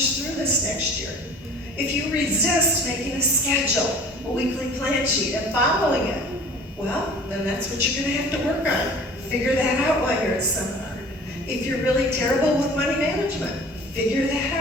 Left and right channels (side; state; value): both; normal; correlation 0.46